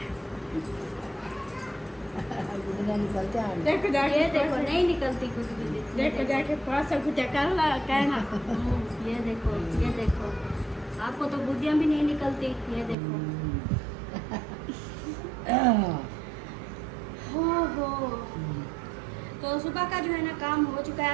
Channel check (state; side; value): drops out; left; at 13.0 s